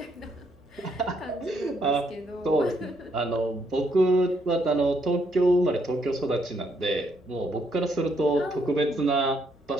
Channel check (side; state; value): both; normal; correlation 0.73